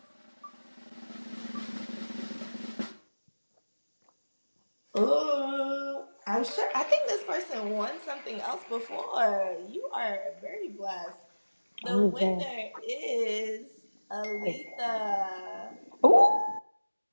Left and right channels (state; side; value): inverted; both; correlation -1.00